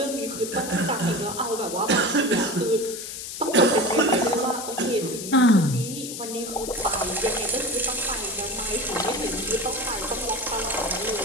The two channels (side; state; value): left; noise; hiss, 8 dB below the sound